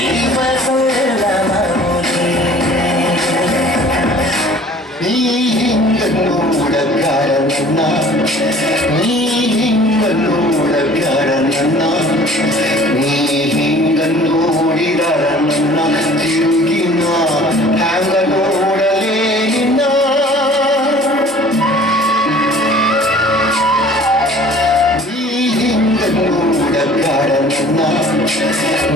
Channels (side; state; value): both; normal; correlation 0.49